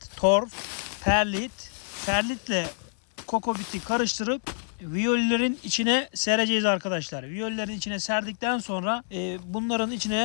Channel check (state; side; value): silent; right; 57 dB below the other